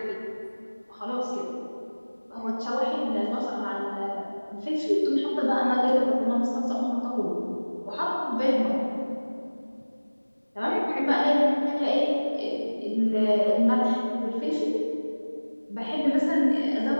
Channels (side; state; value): both; inverted; correlation -1.00